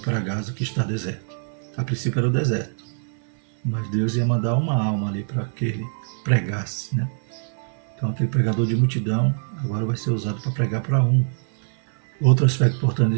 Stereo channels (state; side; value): silent; left; 63 dB below the other